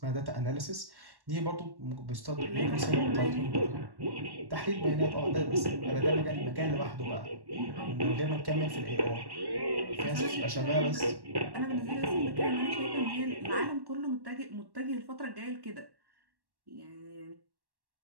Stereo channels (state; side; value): late; left; 1.1 ms